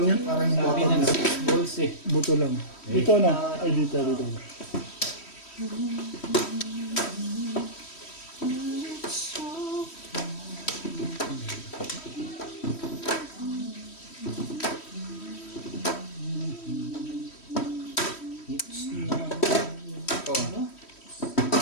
yan. Parang yung Sabi bottom ng na. 6 balls eh. Buto lang. Dito na. Ay, dito. It's not. Ikaw. Ano?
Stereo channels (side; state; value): right; late; 3.1 ms